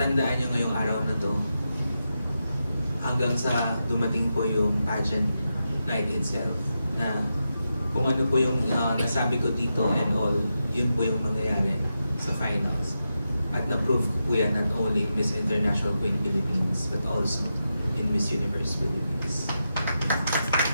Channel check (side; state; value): both; inverted; correlation -0.88